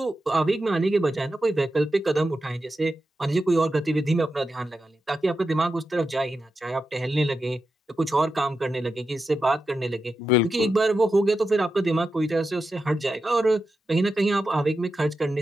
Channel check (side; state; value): both; normal; correlation 0.89